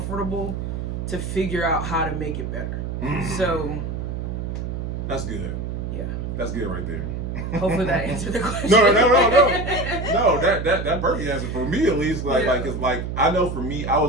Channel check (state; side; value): noise; right; hum, 4 dB below the sound